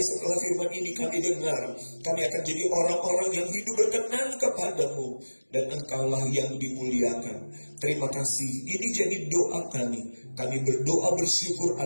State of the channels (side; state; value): both; inverted; correlation -1.00